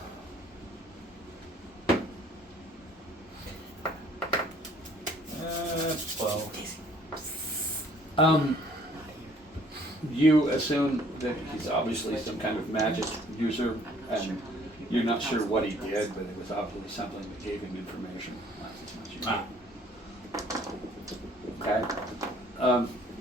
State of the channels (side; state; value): both; normal; correlation 0.58